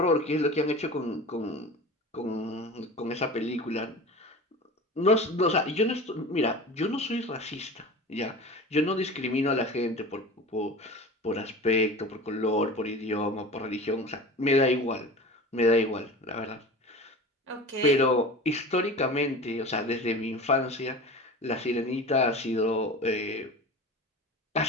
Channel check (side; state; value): both; normal; correlation 0.34